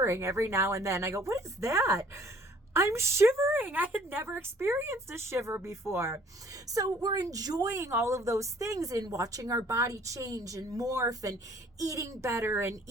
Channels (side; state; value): both; normal; correlation 0.56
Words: every now and then. I go, what is that? I'm shivering. I had never experienced a shiver before. So we're enjoying all of those things and watching our body change and morph and eating better and